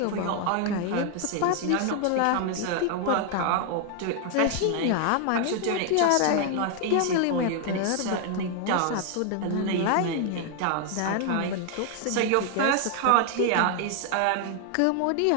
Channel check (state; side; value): different; both; correlation 0.00